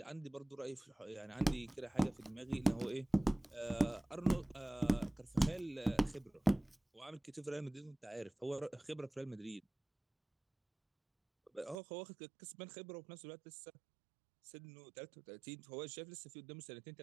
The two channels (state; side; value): drops out; left; at 11.8 s